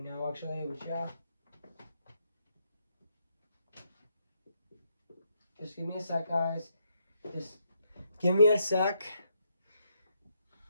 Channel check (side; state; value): both; inverted; correlation -0.77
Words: now actually. Which yeah, just give me a sec, guys. Just give me a sec.